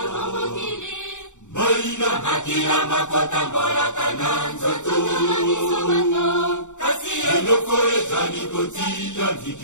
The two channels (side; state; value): right; late; 0.84 ms